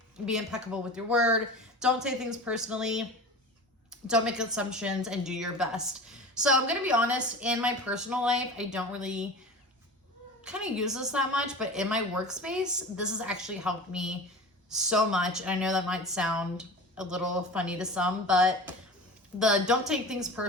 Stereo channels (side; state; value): both; normal; correlation 0.34